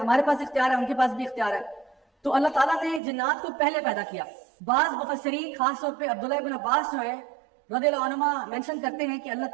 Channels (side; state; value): left; drops out; at 3.0 s